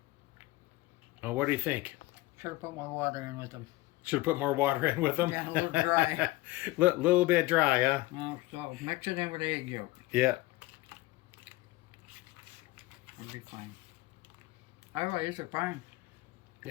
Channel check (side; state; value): right; quieter; 19.0 dB